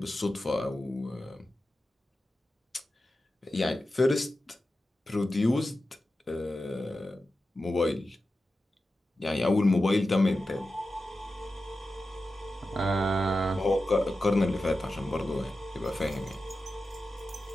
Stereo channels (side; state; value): both; normal; correlation 0.92